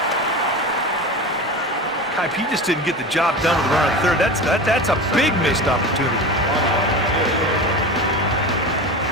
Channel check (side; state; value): both; normal; correlation 0.29